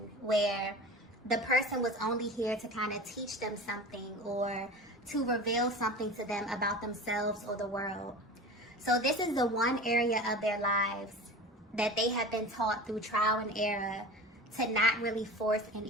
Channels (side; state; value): both; normal; correlation 0.34